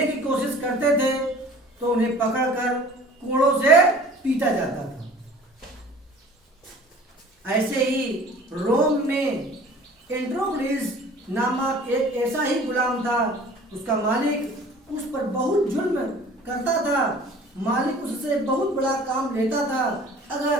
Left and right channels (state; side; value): normal; both; correlation 0.47